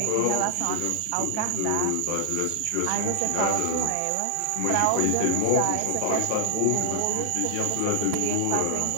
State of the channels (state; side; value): different; both; correlation 0.00